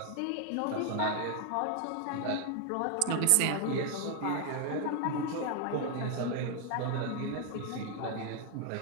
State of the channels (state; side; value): different; both; correlation 0.00